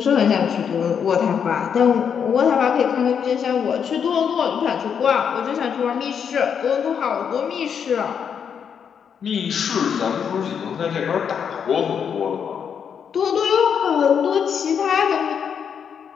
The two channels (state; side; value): quieter; right; 7.4 dB